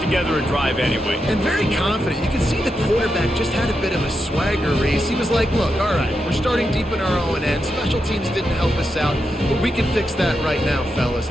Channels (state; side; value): normal; both; correlation 0.86